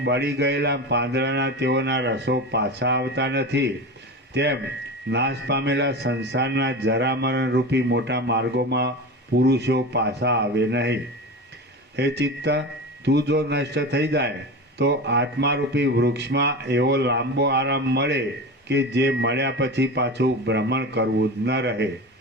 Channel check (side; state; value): both; normal; correlation 0.27